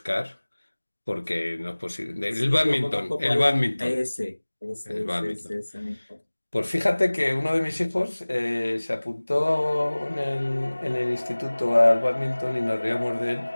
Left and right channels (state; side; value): inverted; both; correlation -1.00